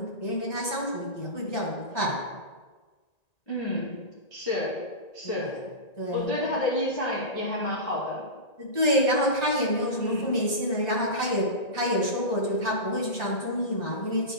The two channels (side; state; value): right; late; 1.9 ms